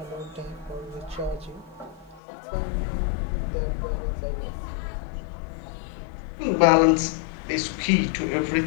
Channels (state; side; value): drops out; right; at 2.2 s